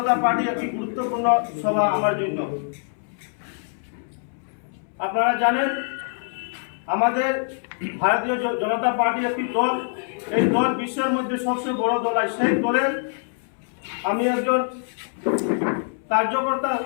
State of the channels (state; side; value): silent; right; 62 dB below the other